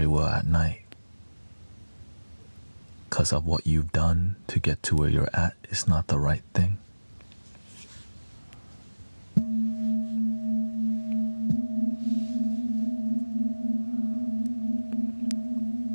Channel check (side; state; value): both; inverted; correlation -1.00